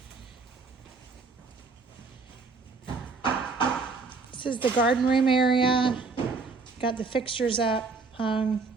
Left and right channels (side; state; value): left; quieter; 4.3 dB